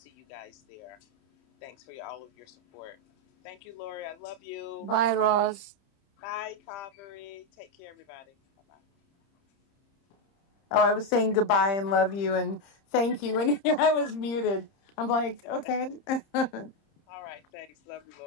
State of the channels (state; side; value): late; right; 30 ms